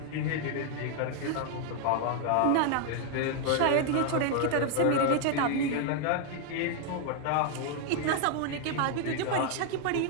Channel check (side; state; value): both; different; correlation 0.00